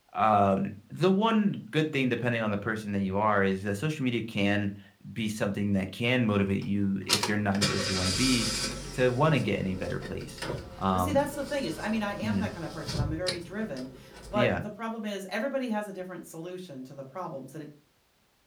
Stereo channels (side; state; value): both; identical; correlation 1.00